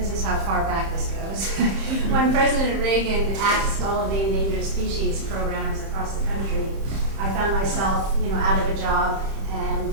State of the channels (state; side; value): late; left; 30 ms